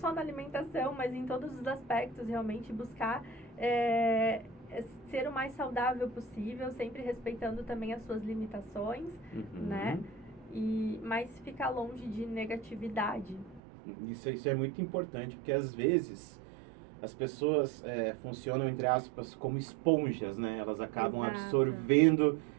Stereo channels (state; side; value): drops out; left; at 13.6 s